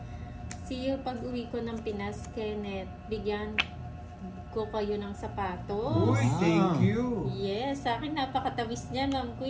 See you pag uwi ko ng Pinas, Kenneth. Bigyan ko kayo ng sapatos. Uy, thank you. Yes, sa akin napakatawis niya, Ma'am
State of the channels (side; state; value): both; identical; correlation 1.00